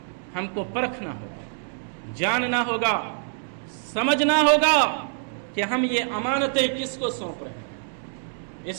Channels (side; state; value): left; silent; digital silence